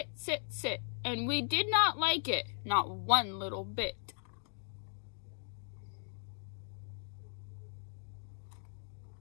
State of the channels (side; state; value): right; silent; digital silence